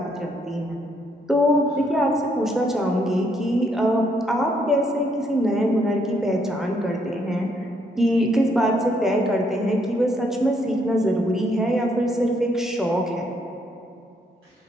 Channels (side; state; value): both; normal; correlation 0.72